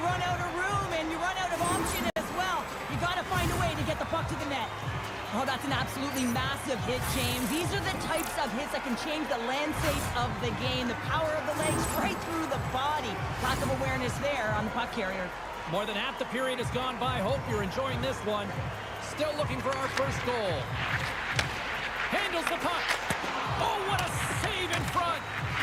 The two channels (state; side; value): identical; both; correlation 1.00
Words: run out of room, and you run out of option as well. You got to find a way to get the puck to the net. Oh, that's an absolutely massive hit, James. These are the types of hits that can change the landscape of the game. The power of the legs right through the body. Lack of awareness there on the puck carrier. More than half the period has gone by. Hope you're enjoying this one. Still looking for our first goal. Handles the puck. Oh, what a save in front.